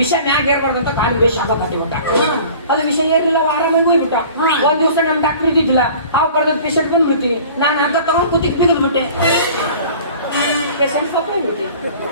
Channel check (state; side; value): inverted; both; correlation -0.45